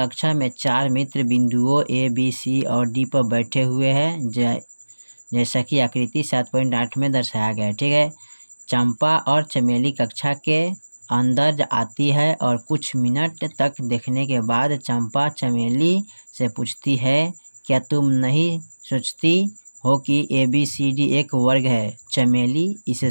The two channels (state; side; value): inverted; both; correlation -1.00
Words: में 4 मित्र बिंदुओं ए बी सी और डी पर बैठे हुए हैं, जैसा कि आकृति 7.8 में दर्शाया गया है। ठीक है, चंपा और चमेली कक्षा के अंदर आती है और कुछ मिनट तक देखने के बाद चंपा चमेली से पूछती है, क्या तुम नहीं सोचती हो कि ABCD एक वर्ग है? चमेली